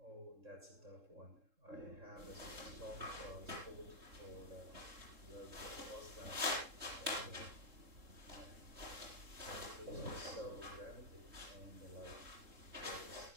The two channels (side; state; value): left; late; 3.7 ms